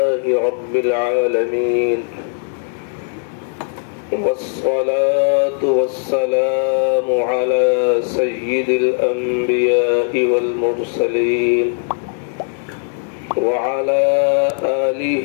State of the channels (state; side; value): silent; right; digital silence